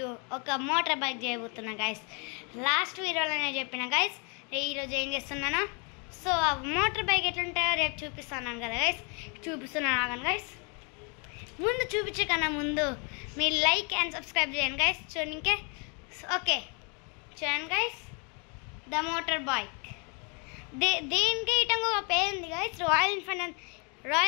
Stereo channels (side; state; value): right; quieter; 34.9 dB